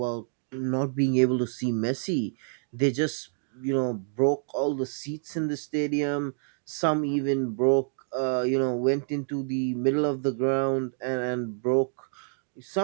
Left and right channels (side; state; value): left; silent; digital silence